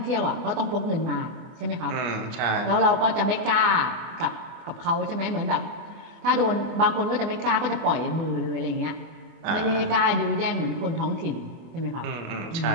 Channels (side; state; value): left; late; 24 ms